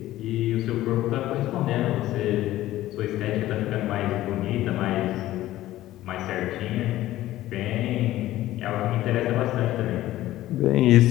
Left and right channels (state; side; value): quieter; right; 15.1 dB